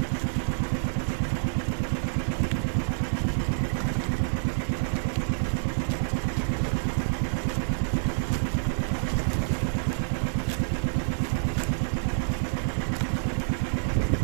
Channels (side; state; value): left; silent; digital silence